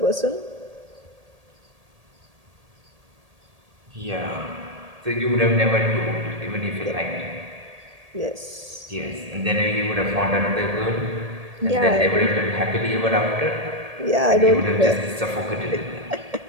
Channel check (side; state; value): left; late; 1.8 ms